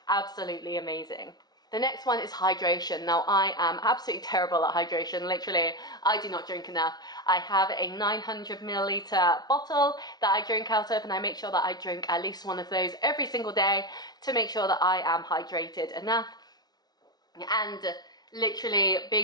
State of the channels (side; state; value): right; late; 0.19 ms